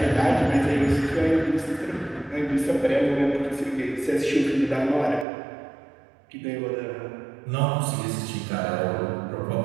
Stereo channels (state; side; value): drops out; left; at 5.2 s